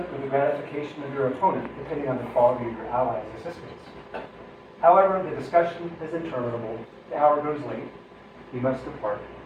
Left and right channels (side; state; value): both; identical; correlation 1.00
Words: or the gratification of your opponent, depending on the quality of your ally's assistance. However, the discussion is interminable. The hour goes late. You must depart.